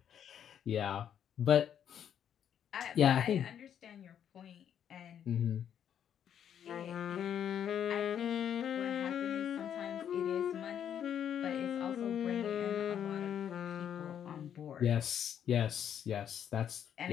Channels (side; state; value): right; quieter; 9.2 dB